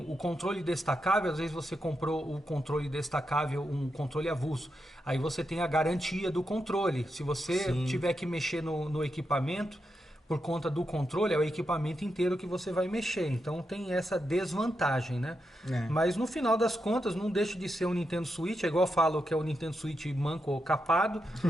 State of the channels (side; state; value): both; normal; correlation 0.85